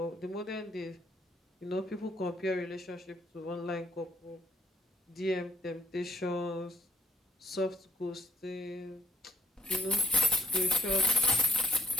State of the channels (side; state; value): both; normal; correlation 0.67